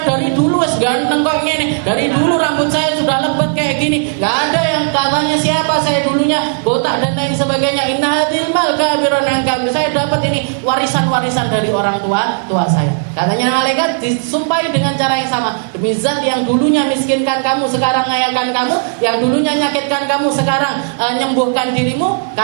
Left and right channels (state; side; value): silent; left; digital silence